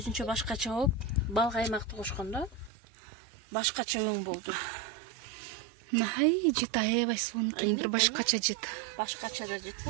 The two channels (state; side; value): drops out; left; at 2.7 s